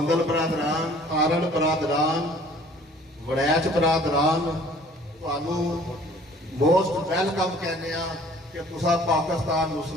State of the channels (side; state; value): both; normal; correlation 0.53